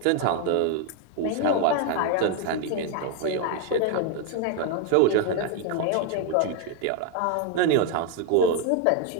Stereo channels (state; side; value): different; both; correlation 0.01